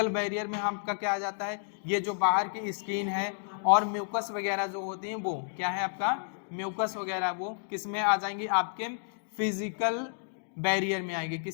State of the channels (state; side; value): silent; right; digital silence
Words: बैरियर में आपका क्या आ जाता है, ये जो बाहर की स्किन है और म्यूकस वगैरह जो होती हैं वो क्या है आपका, म्यूकस वगैरह वो किस में आ जाएंगी, आपके फिजिकल बैरियर में आएगी।